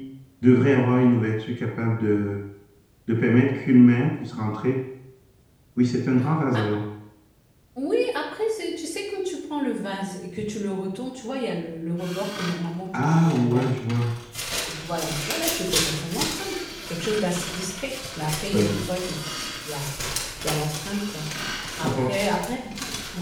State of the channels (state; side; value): identical; both; correlation 1.00